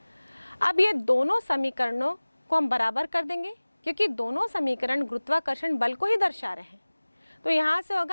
अब ये दोनों समीकरणों को हम बराबर कर देंगे, क्योंकि दोनों समीकरण गुरुत्वाकर्षण बल को ही दर्शा रहे हैं। तो यहाँ से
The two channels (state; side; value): inverted; both; correlation -1.00